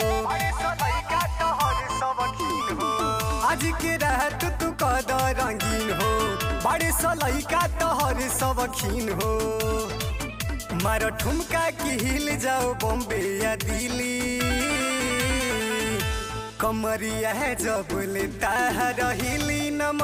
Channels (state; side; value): identical; both; correlation 1.00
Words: बड़े सलई का तोहर सबखीन हो। आज के रात तू कदा रंगीन हो, बड़े सलई का तोहर सबखीन हो। मारो ठुमका की हिल जाओ बॉम्बे या दिल्ली, कमरिया है जबले ताहर हिली